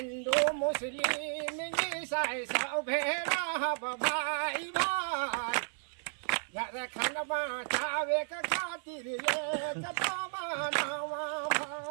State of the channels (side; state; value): left; silent; digital silence